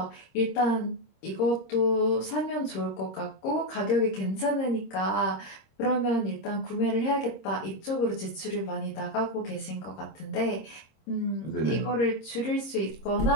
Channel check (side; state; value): right; late; 26 ms